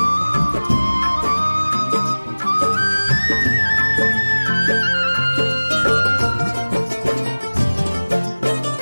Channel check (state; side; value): inverted; both; correlation -1.00